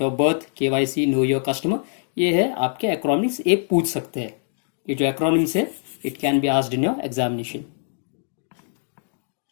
of birth, KYC, know your customer. ये है आपके एक्रोनिम्स, ये पूछ सकते हैं. ये जो एक्रोनिम्स है, it can be asked in your examination.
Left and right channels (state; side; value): silent; right; 63 dB below the other